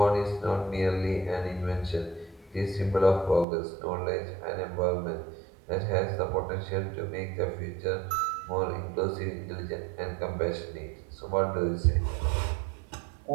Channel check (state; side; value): drops out; left; at 3.5 s